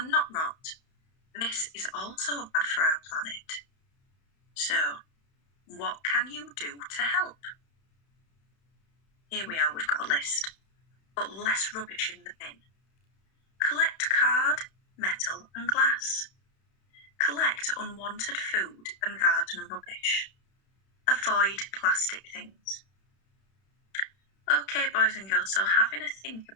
not rot. This is also bad for our planet. So, what can you do to help? Here we are, we've got a list. Put less rubbish in the bin. Collect card, metal and glass. Collect unwanted food and garden rubbish. Avoid plastic things. Okay, boys and girls, so having a think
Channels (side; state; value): right; late; 31 ms